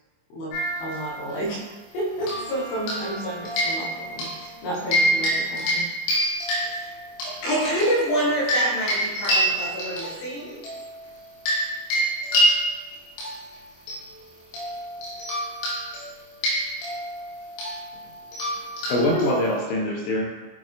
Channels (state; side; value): late; right; 24 ms